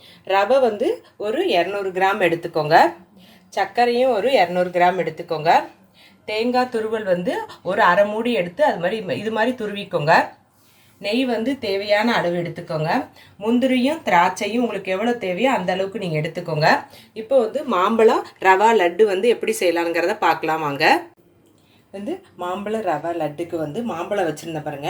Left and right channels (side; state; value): both; identical; correlation 1.00